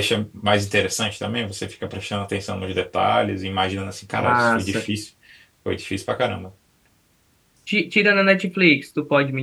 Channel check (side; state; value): both; identical; correlation 1.00